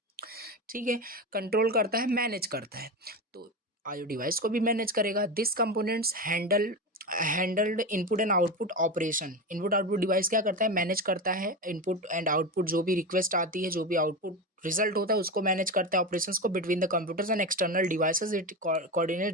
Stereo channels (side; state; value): both; normal; correlation 0.20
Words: ठीक है, कंट्रोल करता है, मैनेज करता है। तो आईओ डिवाइस को भी मैनेज करेगा। This components handled input and output operation. Input output device क्या करता है, मैनेज करता है इनपुट एंड आउटपुट, जो भी रिक्वेस्ट आती है, जो भी आउटपुट रिजल्ट होता है उसको मैनेज करता है, ऑपरेशंस को between the computers and external devices. It coordinate